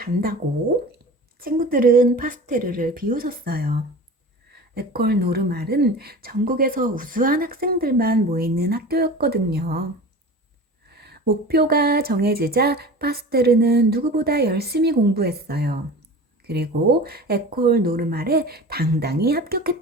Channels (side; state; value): both; normal; correlation 0.36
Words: 친구들은 파스테르를 비웃었어요. 에콜 노르말은 전국에서 우수한 학생들만 모이는 학교였거든요. 목표가 정해지자 파스테르는 누구보다 열심히 공부했어요. 그리고 에콜 노르말에 당당히